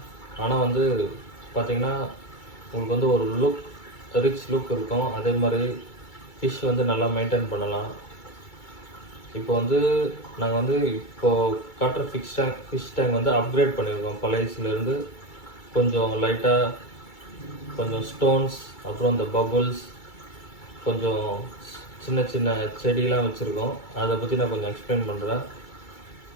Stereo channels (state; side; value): late; right; 2.3 ms